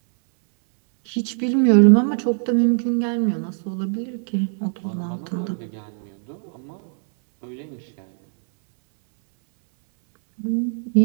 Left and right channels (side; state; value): left; silent; 65 dB below the other